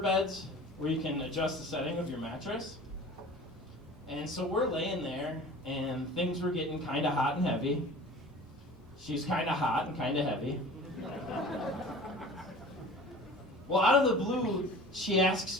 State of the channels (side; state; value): both; normal; correlation 0.41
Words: where you can adjust the setting of your mattress. And so we're laying there, and things were getting kind of hot and heavy. She's kind of hot and kind of heavy. Well, out of the blue, she